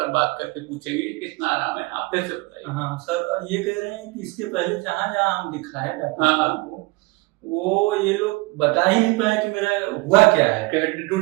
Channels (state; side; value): quieter; left; 24.3 dB